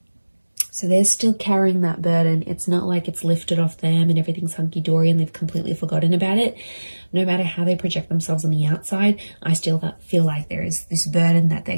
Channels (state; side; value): inverted; both; correlation -1.00